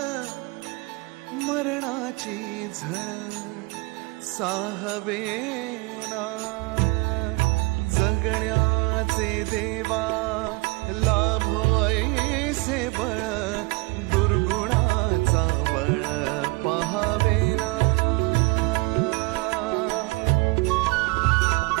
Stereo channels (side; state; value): left; quieter; 26.0 dB